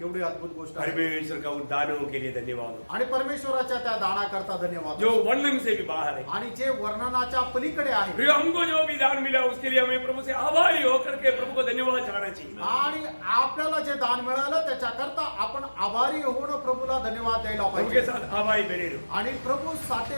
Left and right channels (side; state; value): both; inverted; correlation -1.00